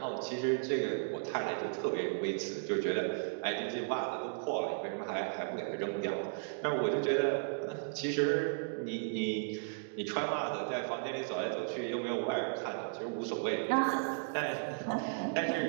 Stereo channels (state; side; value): silent; left; digital silence